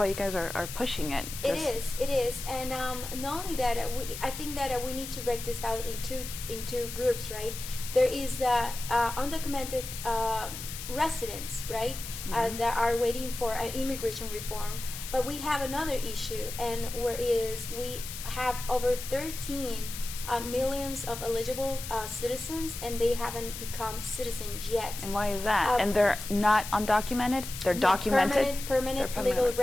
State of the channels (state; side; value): noise; left; hiss, 9 dB below the sound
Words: you guys are pushing it. It is, and not only that, I think that we need to break this out into groups, right? There is undocumented residents, right, that are waiting for immigration reform, but we have another issue, and whereas we have over 13 millions of eligible citizens, and they haven't become citizens yet. And why is that? And they're not undocumented? They're documented? Permanent legal